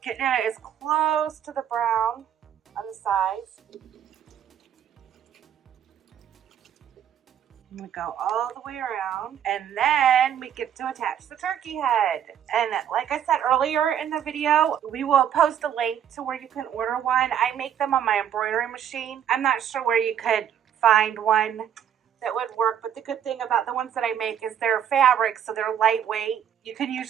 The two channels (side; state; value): left; quieter; 9.3 dB